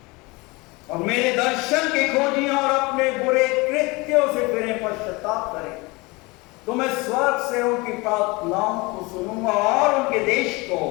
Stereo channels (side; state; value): right; quieter; 24.9 dB